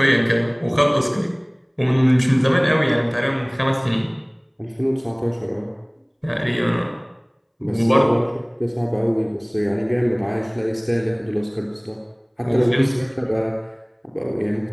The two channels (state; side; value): identical; both; correlation 1.00